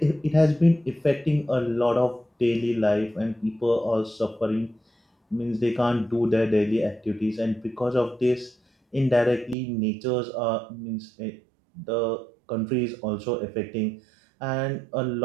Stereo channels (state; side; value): drops out; left; at 9.6 s